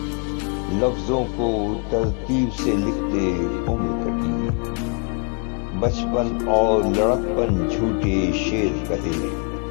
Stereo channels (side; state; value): right; quieter; 37.7 dB